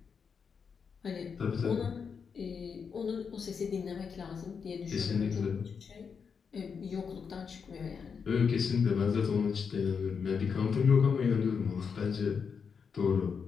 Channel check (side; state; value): right; quieter; 6.1 dB